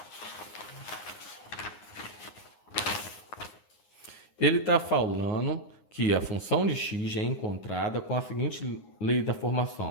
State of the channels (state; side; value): late; right; 9.6 ms